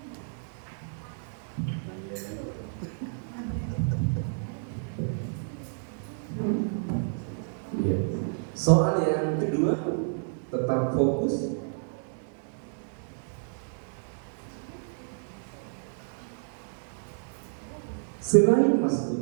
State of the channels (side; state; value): left; silent; 58 dB below the other